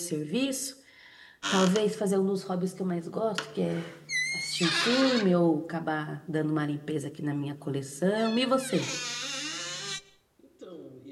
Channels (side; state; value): both; identical; correlation 1.00